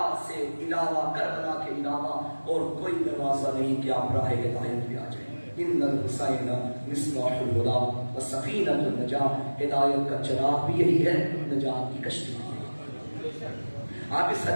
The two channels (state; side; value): inverted; both; correlation -1.00